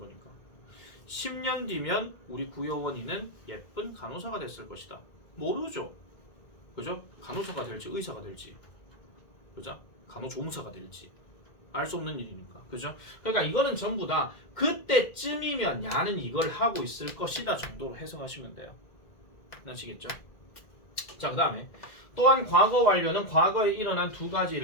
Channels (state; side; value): late; right; 2.0 ms